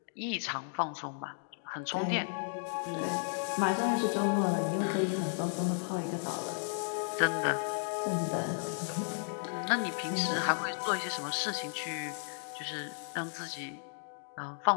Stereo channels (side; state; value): right; silent; digital silence